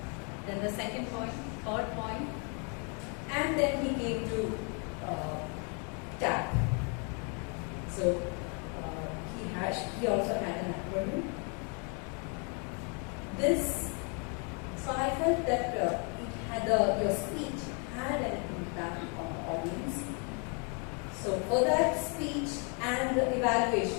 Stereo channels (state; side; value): quieter; right; 37.0 dB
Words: then the second point, third point, and then he came to tap. So he also had an acronym. So I felt that it had your speech had an impact on the audience. So for that speech and the